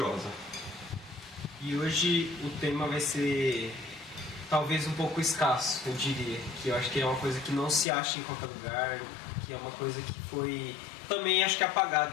E hoje o tema vai ser talvez um pouco escasso, eu diria, que eu acho que é uma coisa que não se acha em qualquer lugar, que é uma coisa que foi também acho que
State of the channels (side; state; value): right; drops out; at 7.9 s